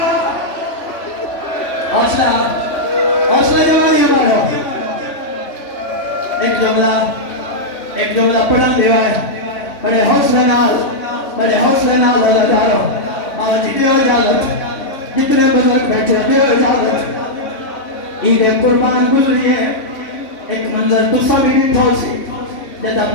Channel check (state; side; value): late; right; 3.6 ms